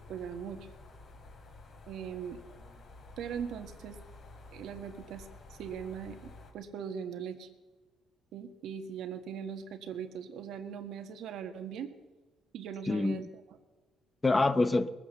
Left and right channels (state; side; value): normal; both; correlation 0.82